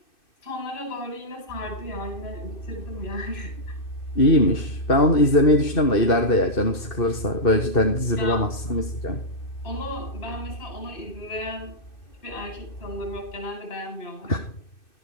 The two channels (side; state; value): right; late; 2.6 ms